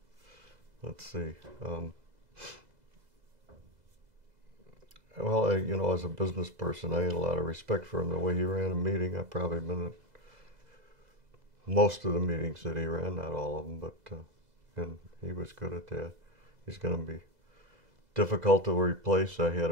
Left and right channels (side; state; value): left; late; 2.0 ms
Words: Let's see. Well, as a business person, I had a lot of respect for him. The way he ran a meeting, I've probably been at most of the meetings that he ran, not all of them, but and he was good at that. He's going to be difficult to replace. I had